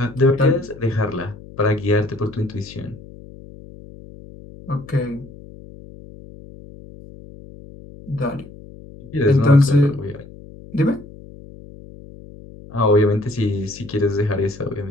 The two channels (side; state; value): left; noise; hum, 18 dB below the sound